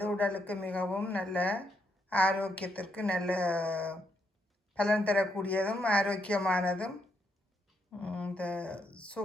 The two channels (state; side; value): normal; both; correlation 0.78